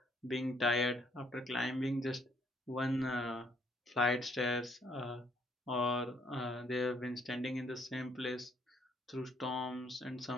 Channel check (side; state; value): both; normal; correlation 0.67